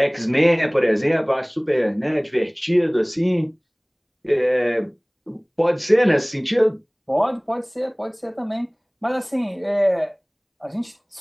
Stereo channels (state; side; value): identical; both; correlation 1.00